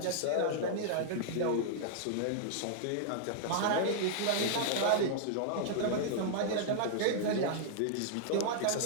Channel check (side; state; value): both; different; correlation -0.01